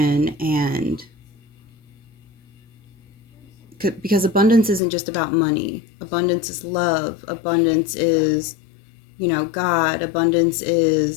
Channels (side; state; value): right; drops out; at 4.8 s